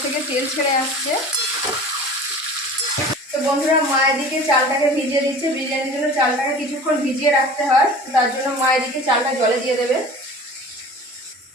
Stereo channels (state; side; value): normal; both; correlation 0.41